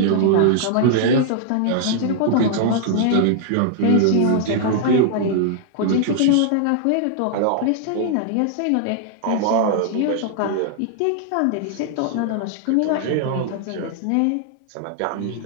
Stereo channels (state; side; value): different; both; correlation -0.01